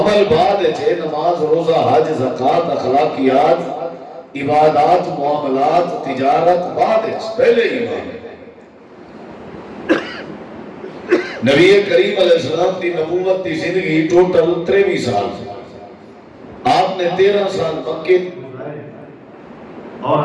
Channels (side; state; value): both; identical; correlation 1.00